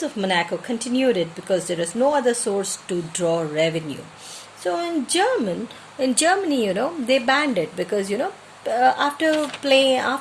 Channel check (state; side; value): identical; both; correlation 1.00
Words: of Monaco continued it because there is no other source to draw revenue. So in Germany, they banned it because,